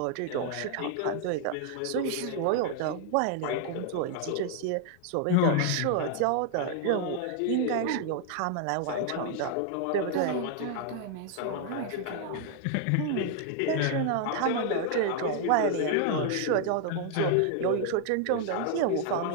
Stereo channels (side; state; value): both; different; correlation 0.00